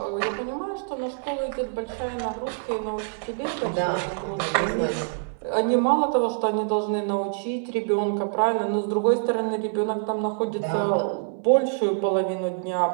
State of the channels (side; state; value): left; silent; 61 dB below the other